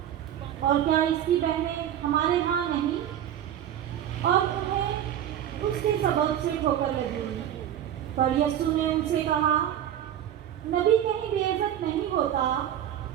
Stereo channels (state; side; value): quieter; left; 10.7 dB